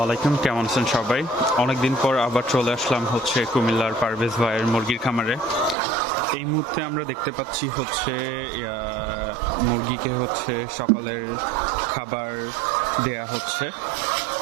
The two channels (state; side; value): drops out; left; at 5.8 s